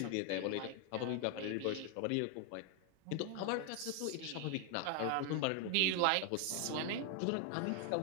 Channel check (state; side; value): different; both; correlation 0.01